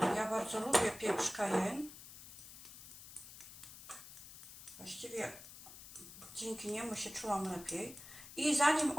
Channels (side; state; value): left; noise; hiss, 15 dB below the sound